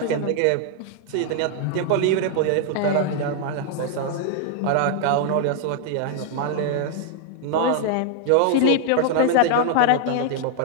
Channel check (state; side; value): different; both; correlation 0.00